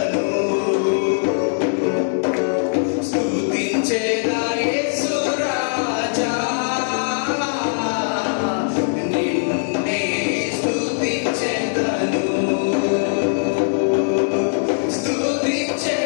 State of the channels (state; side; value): silent; right; digital silence